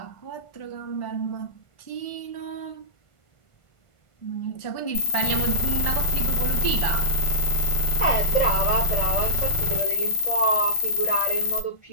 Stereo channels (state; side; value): late; right; 1.5 ms